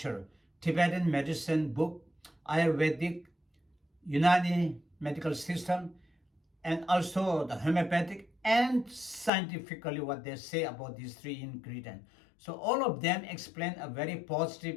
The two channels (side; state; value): right; drops out; at 9.3 s